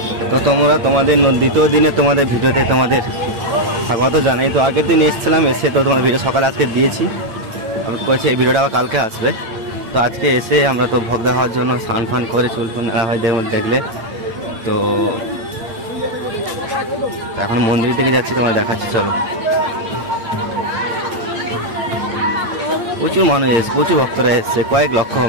তো তোমরা তোমাদের দ্বিতীয় দিনে তোমাদের ভিডিওতে তোমাদের স্বাগত জানাই। তো আগের দিন এসেছিলাম, এসে তো তোমার ভিডিও সকালে আজকে দিয়েছি, আমি বলছি এই ভিডিওটা আবার কালকে আসবে। তো আজকে এসে আমরা তো ভোগ দেওয়ার জন্য স্নান ফান করে চুল ফুল নেওয়া হয় দেখলে। তো এখন মন্দিরের দিকে যাচ্ছি, তোমার দেখাচ্ছি চলো। প্রচুর মানুষ এসছে, প্রচুর ভক্তরা এসছে, কয়েক লক্ষ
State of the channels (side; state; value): left; late; 8.7 ms